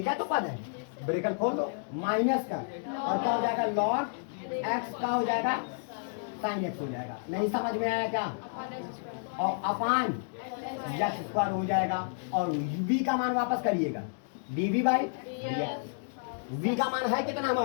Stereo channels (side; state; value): right; silent; digital silence